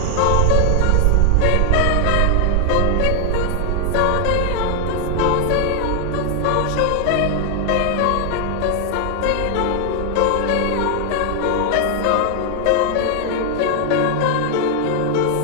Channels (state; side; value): different; both; correlation 0.00